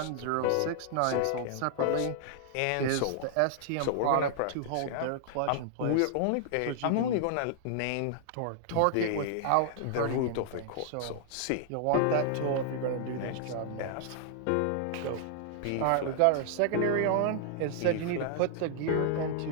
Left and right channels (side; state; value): both; different; correlation -0.01